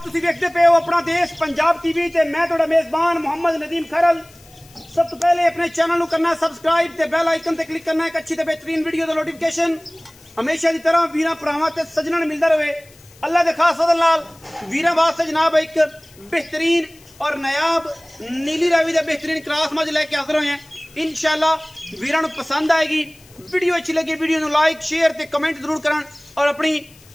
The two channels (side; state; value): left; noise; hiss, 26 dB below the sound